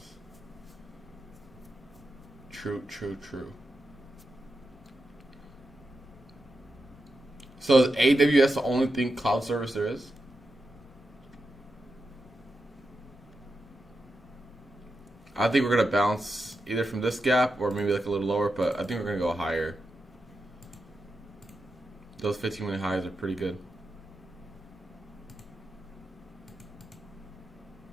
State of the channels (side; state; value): both; normal; correlation 0.88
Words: True. So is AWS the only thing cloud service there is? I think we're gonna bounce either from this gap or maybe like a little lower, but I think we're gonna go higher. Those 15-minute highs are pretty good.